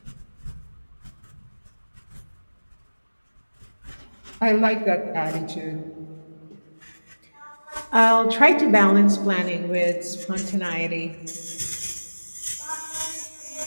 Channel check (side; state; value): both; inverted; correlation -1.00